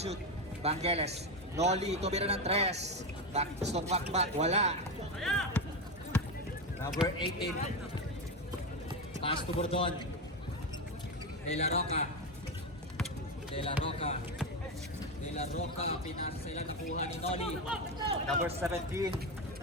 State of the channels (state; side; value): normal; both; correlation 0.13